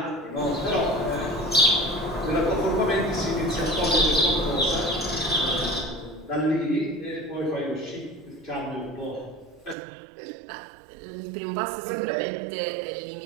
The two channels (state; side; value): drops out; left; at 9.8 s